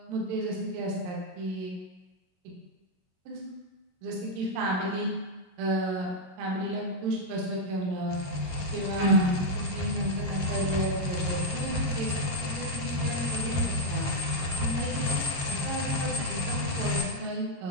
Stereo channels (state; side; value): late; left; 22 ms